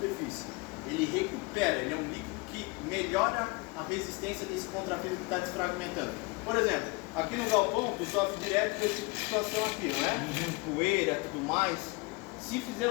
Ele recupera, ele é um líquido que melhora a resistência desse contrapiso que está desfragmentando. Por exemplo, aqui no galpão tu sofre direto com esse tipo de situação aqui, não é? Poeira, tudo mais. Se fizer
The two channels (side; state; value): right; quieter; 26.6 dB